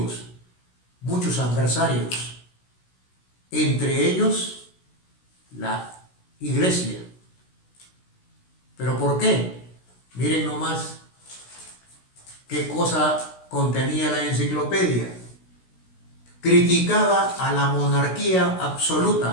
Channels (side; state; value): right; late; 16 ms